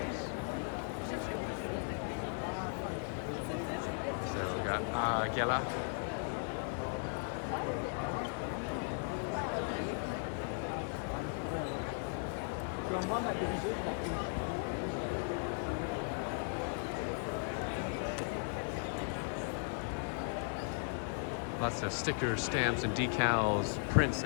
So we got Gela. Lots of stickers, stamps, and decals, prints,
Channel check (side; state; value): right; silent; 53 dB below the other